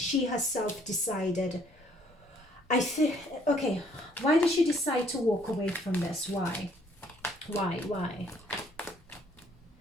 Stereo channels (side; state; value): both; normal; correlation 0.63